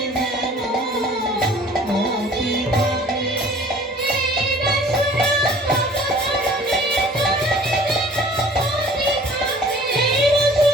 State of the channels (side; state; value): both; normal; correlation 0.50